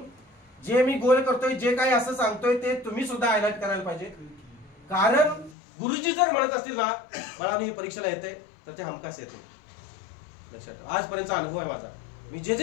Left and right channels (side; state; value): right; drops out; at 5.6 s